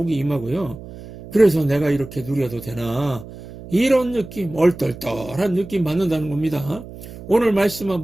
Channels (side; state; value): right; noise; hum, 15 dB below the sound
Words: 임하고요. 그래서 내가 이렇게 누려도 되나 이런 느낌, 얼떨떨한 느낌 받는다는 겁니다. 오늘 말씀